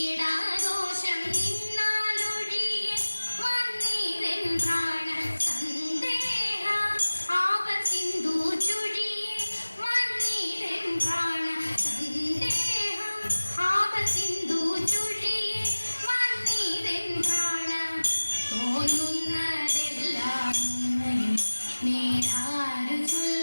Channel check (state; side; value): inverted; both; correlation -1.00